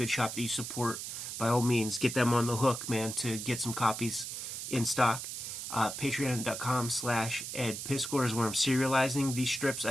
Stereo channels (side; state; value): right; noise; hiss, 6 dB below the sound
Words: shop that you support, by all means, get them on the hook, man, to get some copies in stock. Patreon.com/EdPiscore is where I'm serializing these strips